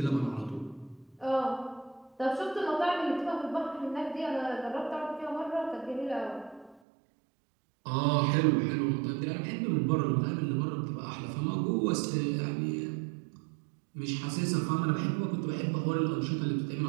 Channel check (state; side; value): drops out; left; at 6.8 s